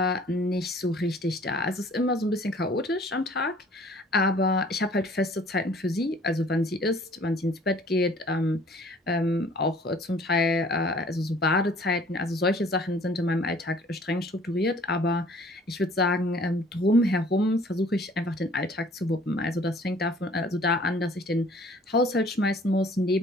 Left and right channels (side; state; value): both; normal; correlation 0.54